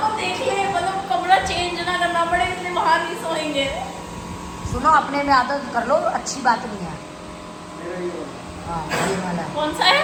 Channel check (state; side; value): identical; both; correlation 1.00